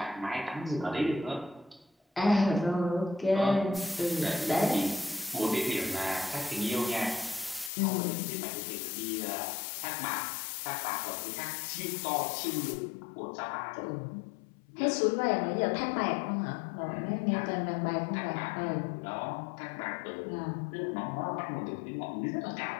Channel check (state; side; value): drops out; right; at 7.7 s